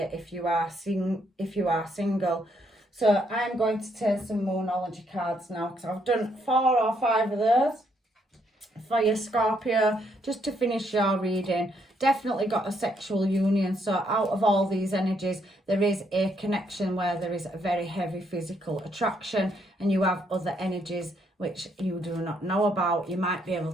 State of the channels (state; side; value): normal; both; correlation 0.73